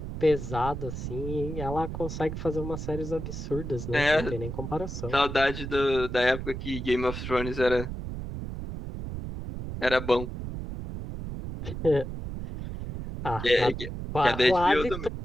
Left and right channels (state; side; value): noise; right; rumble, 7 dB below the sound